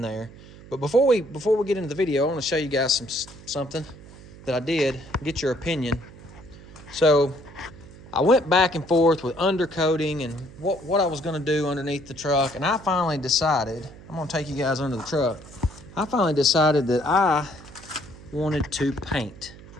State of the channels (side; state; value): right; noise; hum, 19 dB below the sound